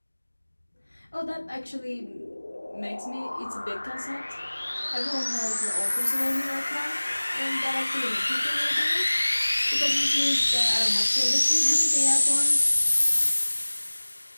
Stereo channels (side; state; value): both; inverted; correlation -1.00